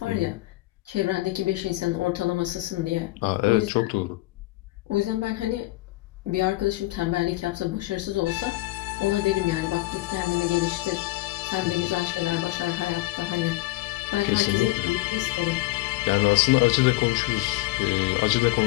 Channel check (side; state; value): right; quieter; 19.5 dB